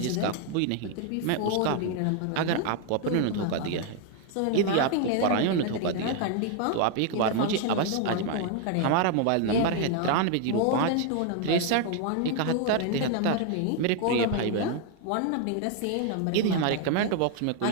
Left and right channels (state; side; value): different; both; correlation 0.00